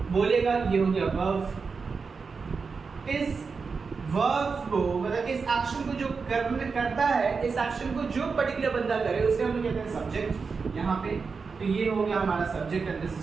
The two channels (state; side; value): quieter; left; 5.0 dB